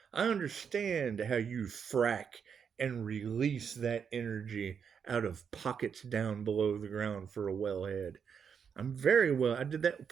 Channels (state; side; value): quieter; left; 7.0 dB